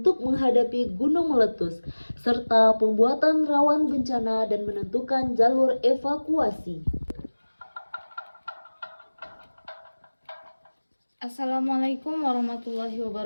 menghadapi gunung meletus, serta pembuatan rawan bencana dan menentukan jalur evakuasi. Assalamualaikum warahmatullahi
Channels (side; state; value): both; inverted; correlation -1.00